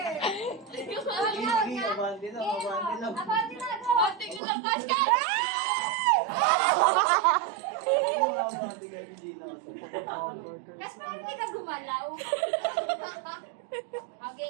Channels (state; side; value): drops out; left; at 4.4 s